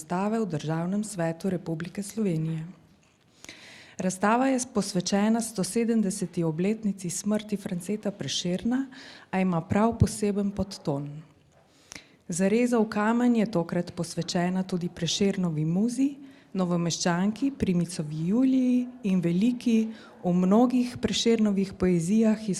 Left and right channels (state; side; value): identical; both; correlation 1.00